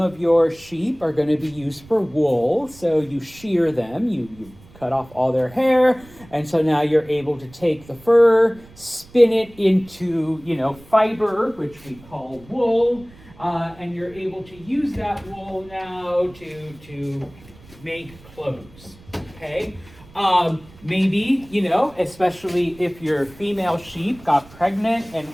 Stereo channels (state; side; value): noise; right; rumble, 23 dB below the sound